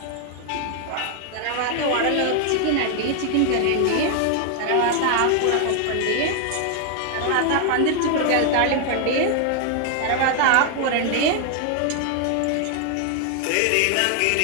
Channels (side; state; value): both; different; correlation 0.00